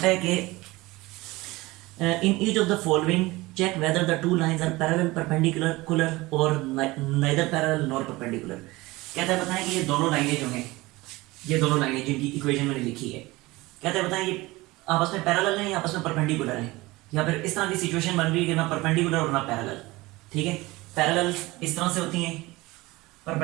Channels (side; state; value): left; quieter; 20.8 dB